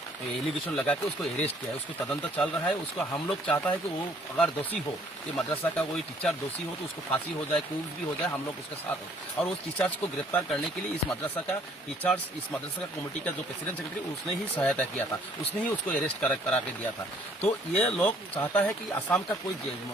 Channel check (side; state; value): both; normal; correlation 0.61